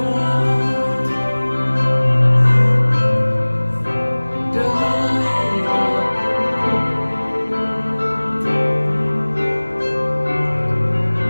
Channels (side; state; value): both; inverted; correlation -1.00